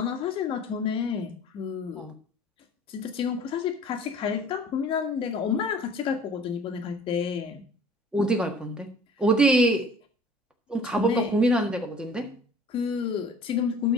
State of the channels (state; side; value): normal; both; correlation 0.49